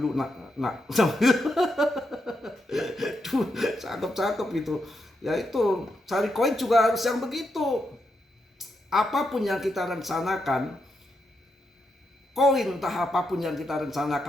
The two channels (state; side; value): normal; both; correlation 0.83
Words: nak. Duh, cakep-cakep gitu. Ya itu, cari koin juga harus yang begitu. Apapun yang kita rencanakan, koin entah apapun yang kita